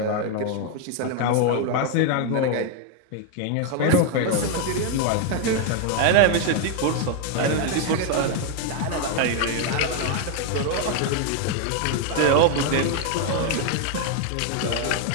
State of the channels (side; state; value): both; different; correlation 0.00